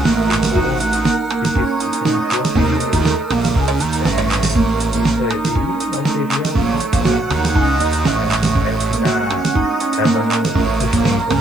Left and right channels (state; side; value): noise; right; hiss, 28 dB below the sound